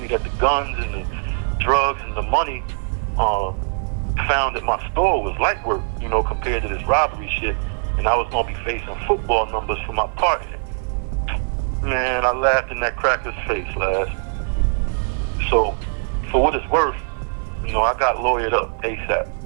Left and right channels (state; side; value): silent; left; 55 dB below the other